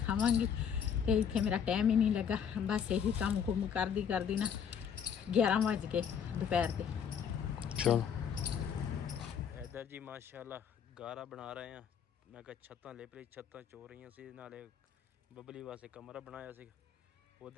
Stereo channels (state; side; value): quieter; right; 7.7 dB